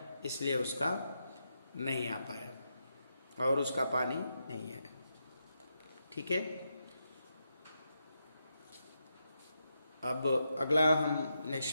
इसलिए उसका नहीं आ पाया और उसका पानी नहीं है, ठीक है। अब अगला हम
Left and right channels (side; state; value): both; inverted; correlation -0.84